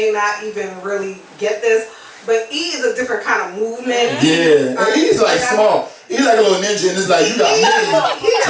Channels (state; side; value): identical; both; correlation 1.00